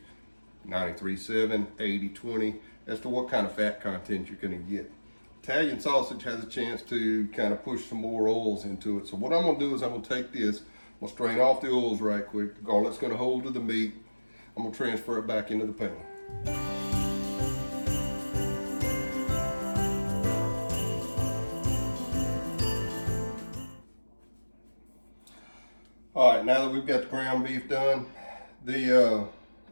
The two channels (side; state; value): both; inverted; correlation -1.00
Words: 93.7, 80-20, as to what kind of fat content you're going to get. Italian sausage has a chance to kind of push some more oils into it. So what I'm going to do is I'm going to take this, I'm going to strain off the oils right quick. The garlic's going to hold to the meat. I'm going to transfer it back into the pan. All right, now that we've got the ground beef done, a